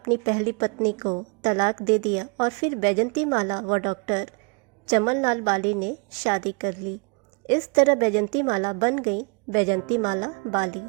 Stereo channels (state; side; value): quieter; left; 34.1 dB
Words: पहली पत्नी को तलाक दे दिया और फिर बैजंती माला व डॉक्टर चमनलाल बाली ने शादी कर ली। इस तरह बैजंती माला बन गई बैजंती माला बाली।